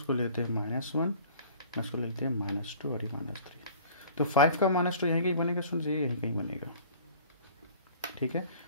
लेते हैं -1, इसको लेते हैं -2 और ये -3। तो 5 का -2 यहीं कहीं बनेगा स्टूडेंट्स, ये यहीं कहीं बनेगा, ठीक है।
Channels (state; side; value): inverted; both; correlation -0.48